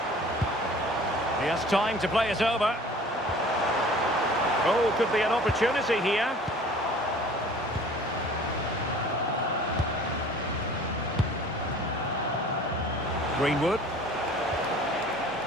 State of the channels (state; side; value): normal; both; correlation 0.47